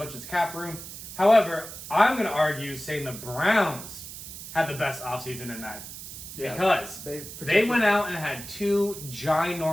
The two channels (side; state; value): right; noise; hiss, 11 dB below the sound